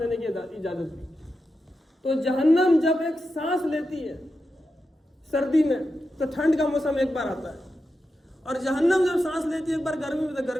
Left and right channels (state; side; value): normal; both; correlation 0.89